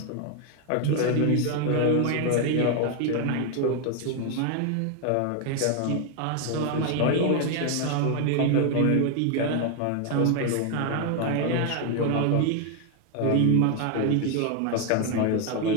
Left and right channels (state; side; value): different; both; correlation 0.01